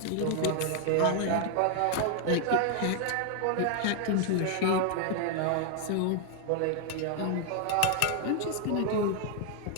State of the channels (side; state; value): both; different; correlation 0.00